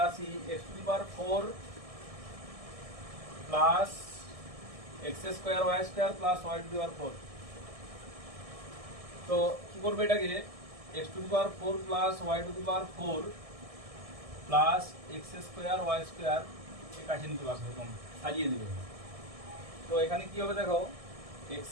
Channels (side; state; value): left; late; 1.6 ms